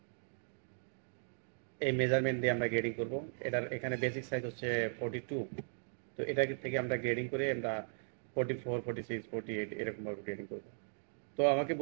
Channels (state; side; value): silent; left; digital silence